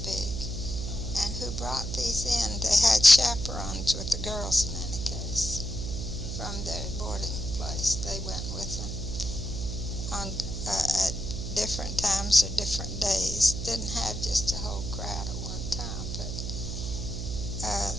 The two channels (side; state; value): right; noise; hum, 4 dB below the sound